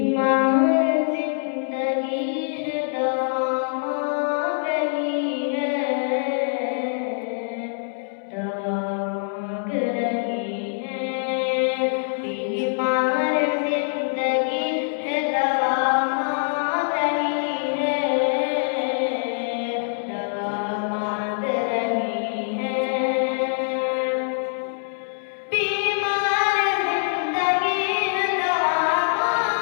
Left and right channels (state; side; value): silent; right; 63 dB below the other